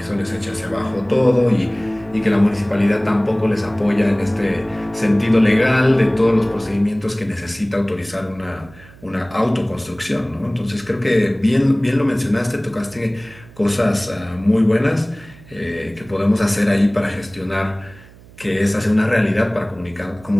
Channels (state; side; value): noise; right; hum, 23 dB below the sound